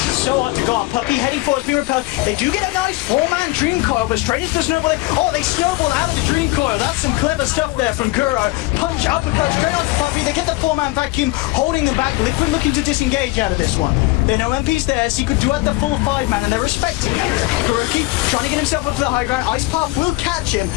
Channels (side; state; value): right; quieter; 20.4 dB